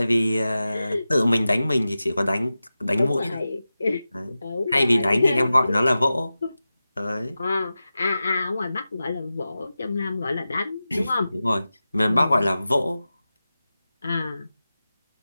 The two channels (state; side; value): inverted; both; correlation -0.94